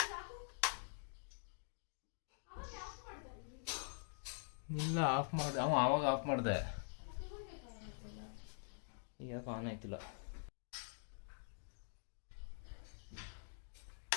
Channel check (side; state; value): right; silent; digital silence